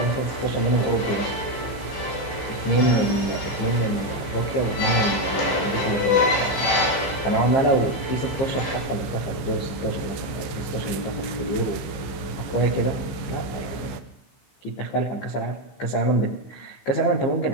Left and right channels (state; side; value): late; right; 15 ms